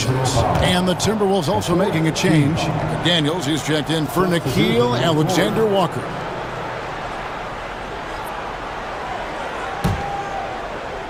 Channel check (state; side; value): identical; both; correlation 1.00